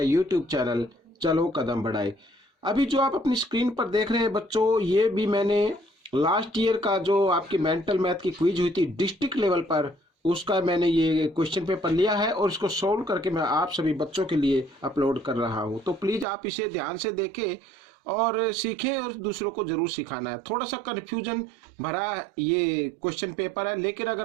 चैनल चलो कदम बढ़ाए। अभी जो आप अपनी स्क्रीन पर देख रहे हैं बच्चों, ये भी मैंने लास्ट ईयर का जो आपकी मेंटल मैथ की क्विज हुई थी डिस्ट्रिक्ट लेवल पर, उसका मैंने ये क्वेश्चन पेपर लिया है और इसको सोल्व करके मैं आप सभी बच्चों के लिए अपलोड कर रहा हूँ। तो प्लीज़ आप इसे ध्यान से देखें और सीखें और दूसरों को जरूर सिखाना है। थोड़ा सा कन्फ्यूजन भरा ये क्वेश्चन पेपर है, लेकिन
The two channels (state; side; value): drops out; left; at 16.2 s